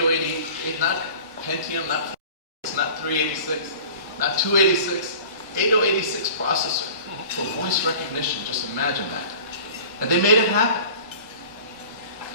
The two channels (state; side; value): inverted; both; correlation -0.42